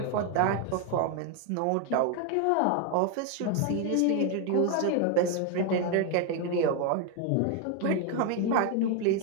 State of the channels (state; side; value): different; both; correlation 0.01